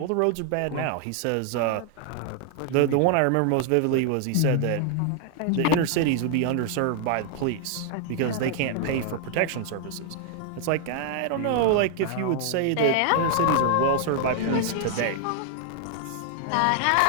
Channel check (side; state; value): both; different; correlation 0.00